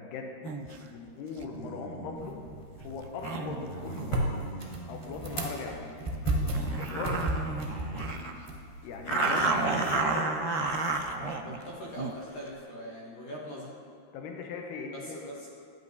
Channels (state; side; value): late; right; 13 ms